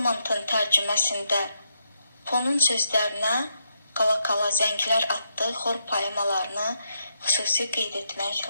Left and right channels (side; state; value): both; inverted; correlation -0.79